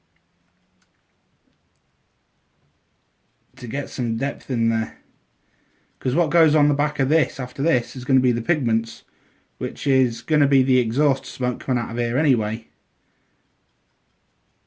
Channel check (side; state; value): both; identical; correlation 1.00